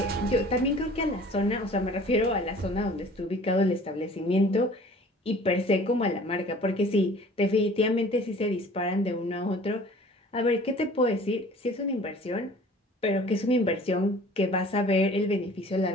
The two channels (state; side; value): normal; both; correlation 0.48